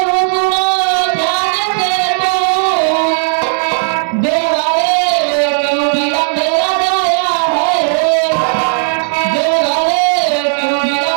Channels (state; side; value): silent; left; digital silence